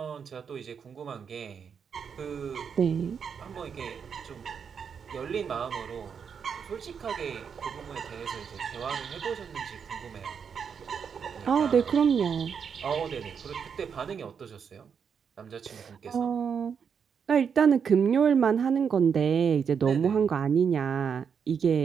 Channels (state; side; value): quieter; left; 6.8 dB